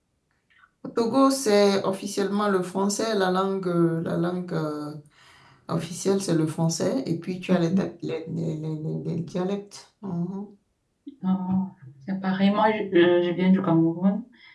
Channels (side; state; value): both; identical; correlation 1.00